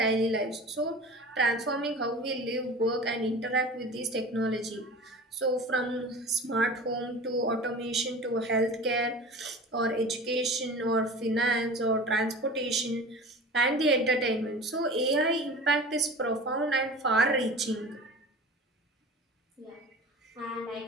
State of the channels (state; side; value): normal; both; correlation 0.37